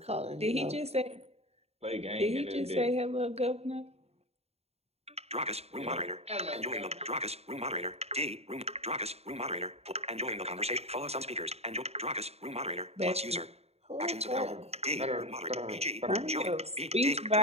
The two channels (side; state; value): left; late; 0.30 ms